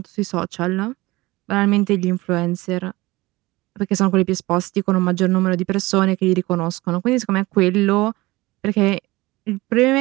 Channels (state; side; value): quieter; left; 20.7 dB